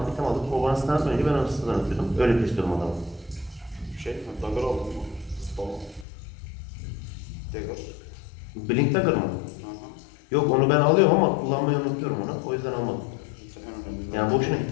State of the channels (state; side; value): drops out; right; at 6.1 s